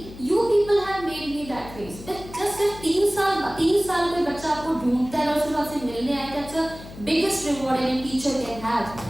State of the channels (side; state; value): left; noise; hum, 15 dB below the sound